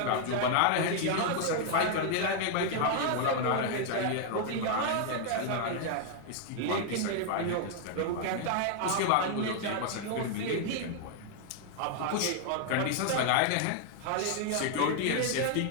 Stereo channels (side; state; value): both; different; correlation 0.00